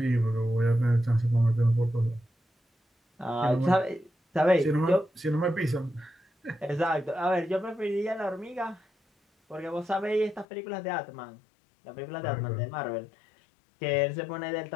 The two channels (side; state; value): right; drops out; at 10.5 s